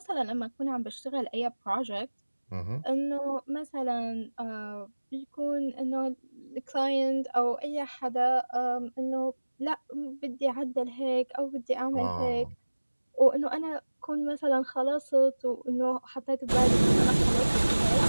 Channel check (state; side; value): inverted; both; correlation -1.00